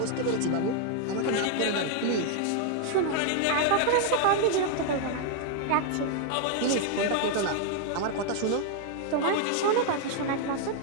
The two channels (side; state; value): both; different; correlation 0.00